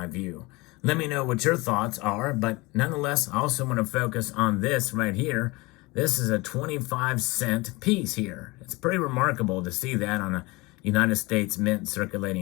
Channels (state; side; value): quieter; right; 23.7 dB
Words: view. Let me know what your thoughts are, but nonetheless, I also want to focus on this right here. This is a 25-cent piece here. It's pretty remarkable to see that on a United States Mint